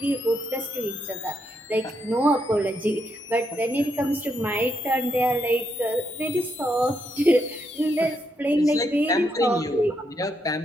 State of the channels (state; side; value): normal; both; correlation 0.79